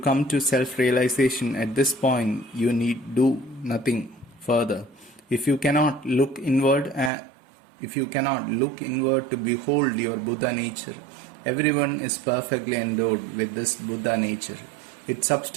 to self-realization at this point, you need do nothing further. If you cannot look inward, to behold your Buddha nature, everyone is perfectly endowed with this Buddha nature. Its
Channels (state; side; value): drops out; left; at 7.1 s